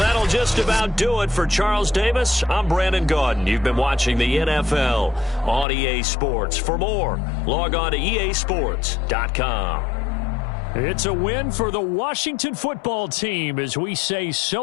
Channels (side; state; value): right; drops out; at 5.7 s